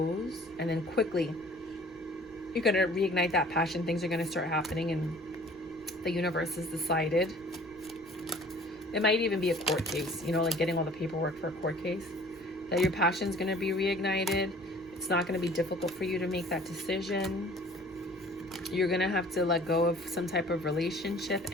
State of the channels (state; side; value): noise; right; rumble, 26 dB below the sound